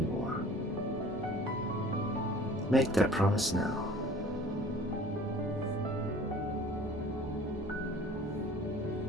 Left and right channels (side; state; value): both; normal; correlation 0.48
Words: Make that promise now.